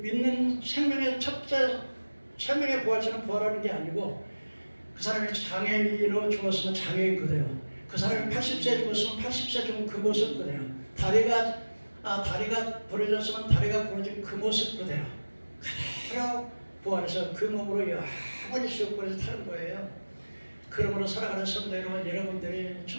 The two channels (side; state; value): both; inverted; correlation -1.00